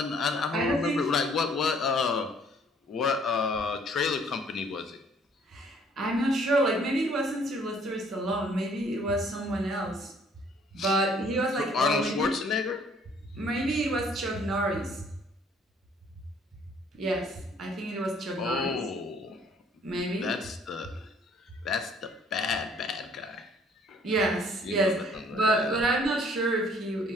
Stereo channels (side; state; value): both; normal; correlation 0.60